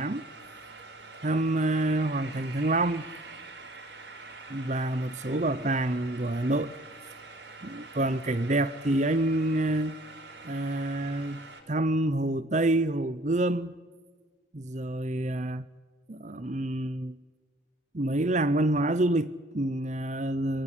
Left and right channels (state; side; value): normal; both; correlation 0.55